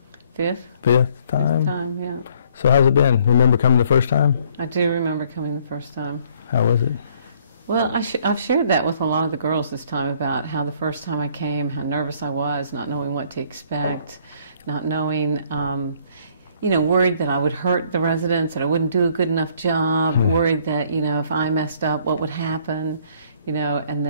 Fifth time? Fifth time, yeah. So how's it been? Remember coming the first time? I do remember coming the first time. How was it? Well, I've shared that with a lot of the girls this time about how the first time I came, how nervous I was, not knowing what to expect, not knowing, worried that I would hurt the residents, that I wouldn't do a good enough job, worried that, if I messed up, what would happen, and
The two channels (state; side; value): inverted; both; correlation -0.62